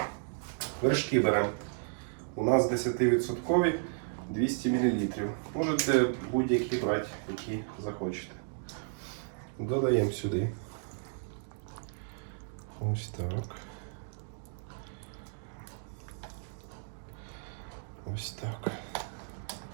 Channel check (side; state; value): left; silent; digital silence